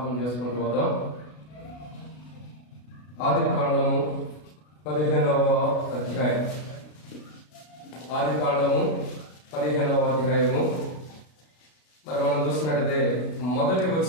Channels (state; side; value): late; right; 33 ms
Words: చేసుకుంటూ పోదాం. ఆదికాండము 15వ అధ్యాయం. ఆదికాండము 15వ అధ్యాయము. మరి మనం చూసినట్టయితే మొదటి